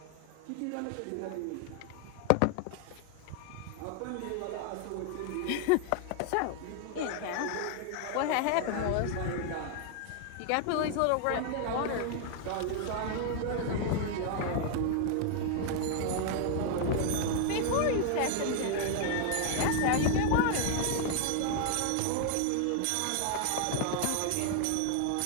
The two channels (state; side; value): different; both; correlation 0.00